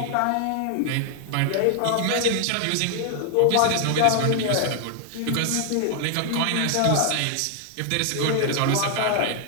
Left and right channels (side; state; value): both; different; correlation 0.00